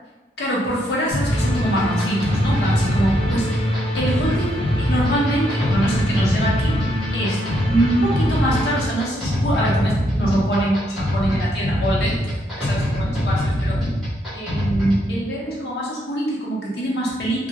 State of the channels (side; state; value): both; normal; correlation 0.75